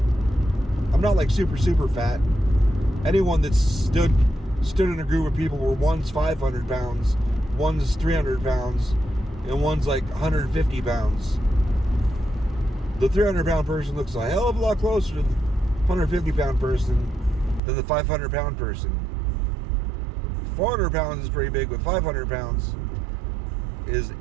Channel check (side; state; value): left; drops out; at 17.6 s